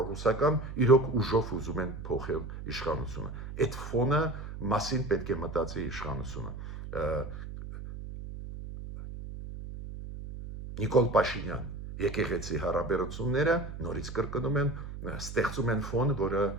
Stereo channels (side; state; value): right; noise; hum, 9 dB below the sound